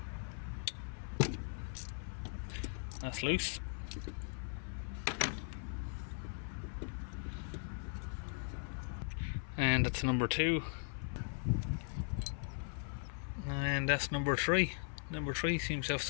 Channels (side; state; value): right; silent; 52 dB below the other